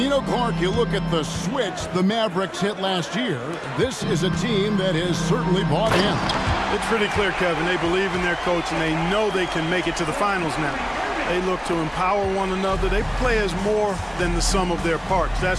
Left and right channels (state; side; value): identical; both; correlation 1.00